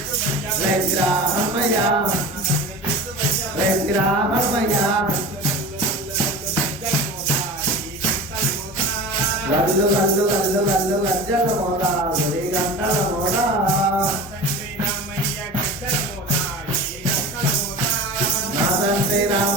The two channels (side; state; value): both; normal; correlation 0.33